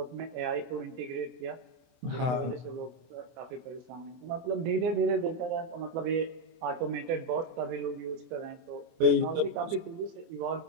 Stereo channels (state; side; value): late; left; 24 ms